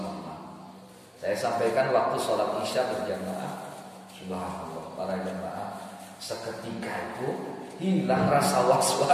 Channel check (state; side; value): identical; both; correlation 1.00